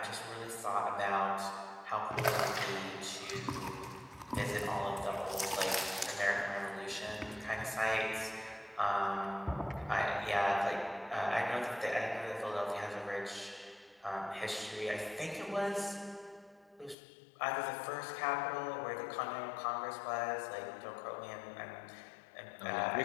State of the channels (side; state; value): right; drops out; at 16.9 s